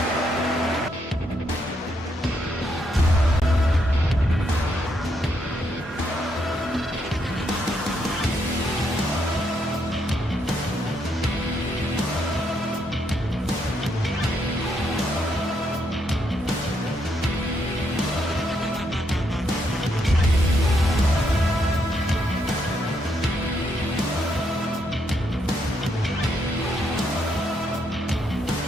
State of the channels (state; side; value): normal; both; correlation 0.76